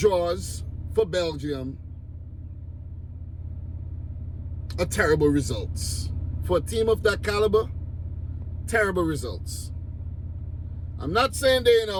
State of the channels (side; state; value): both; identical; correlation 1.00